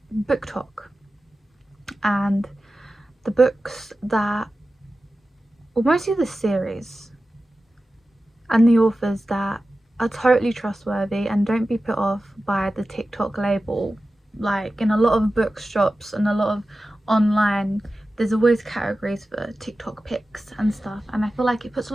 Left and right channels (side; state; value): both; normal; correlation 0.94